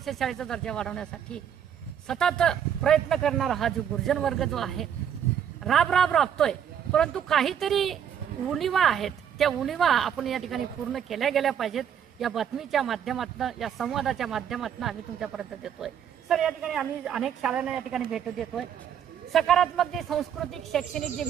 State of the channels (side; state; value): left; quieter; 8.8 dB